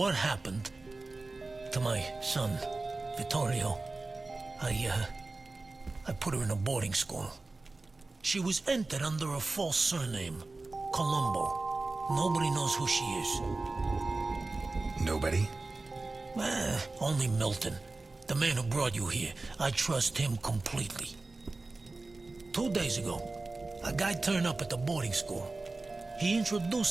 happened to my son, Vittorio, I put her in a boarding school. She was entered under a false surname, Colombo. Nobody knows who she is. Nobody? Only Milton, the man who brought you here. I trust him completely. 2 days ago, a guy turned up at the boarding school. He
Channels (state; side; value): quieter; left; 3.4 dB